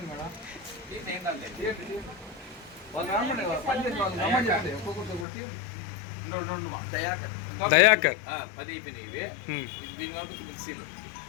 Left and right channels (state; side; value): drops out; right; at 5.2 s